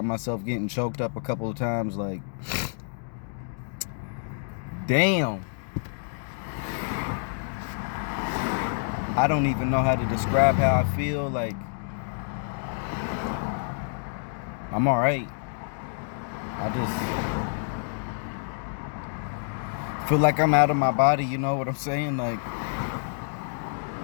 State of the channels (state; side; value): silent; right; digital silence